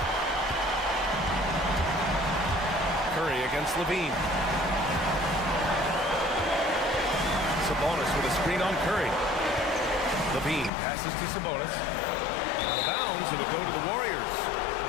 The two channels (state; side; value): drops out; right; at 10.7 s